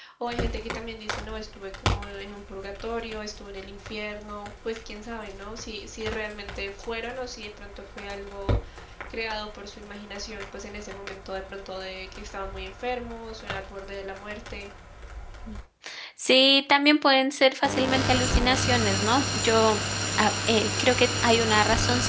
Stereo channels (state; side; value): identical; both; correlation 1.00